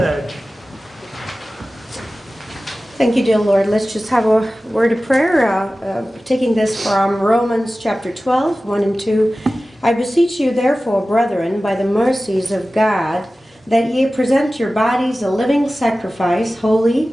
Thank you, dear Lord. Let's just have a word of prayer, taking this from Romans chapter 12, 1 and 2. I beseech you, therefore, brethren, by the mercies of God, that ye present your bodies a living sacrifice, holy,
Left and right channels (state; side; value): normal; both; correlation 0.96